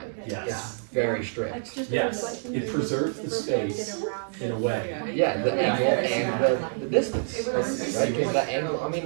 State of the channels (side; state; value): left; silent; digital silence